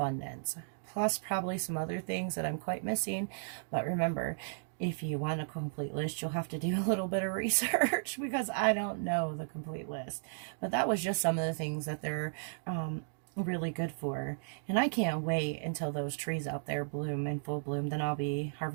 Plus probably some other things that I'm quite missing, but remember, if you want a complete list, you'll have to do a little bit of research because I don't know the complete list. But that was just some of the things that they're really good for. And I can't wait until those trees out there bloom in full bloom. Then I'll be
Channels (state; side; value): silent; left; digital silence